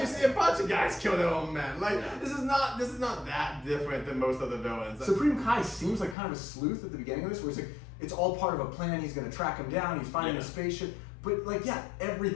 see a bunch of guys kill their own men. Like this is not that different than most other villains. Supreme Kai seems like kind of a sleuth at the beginning of this, where he's like, it's all part of a plan. He's going to track him down. He's finding a spaceship. But like,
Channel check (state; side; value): drops out; right; at 6.2 s